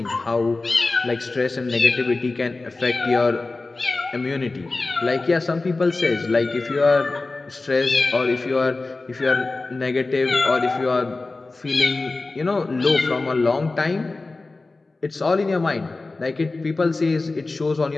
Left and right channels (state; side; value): quieter; right; 3.4 dB